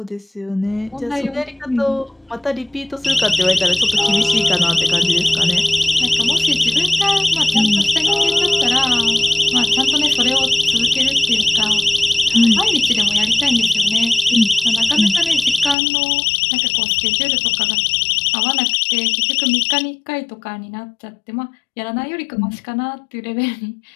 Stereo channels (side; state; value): right; drops out; at 15.8 s